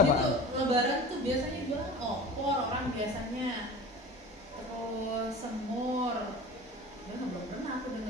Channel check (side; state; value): both; normal; correlation 0.37